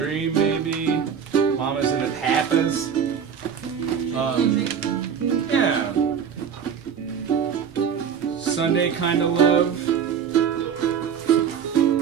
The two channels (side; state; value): left; quieter; 7.5 dB